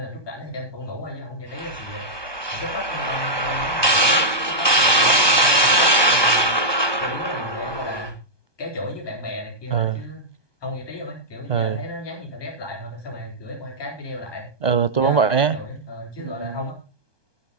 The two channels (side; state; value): right; late; 1.2 ms